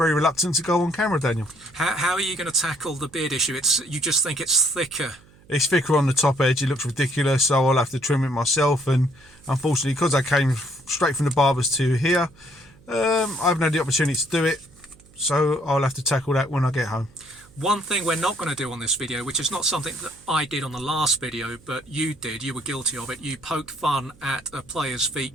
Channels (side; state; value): right; noise; hum, 27 dB below the sound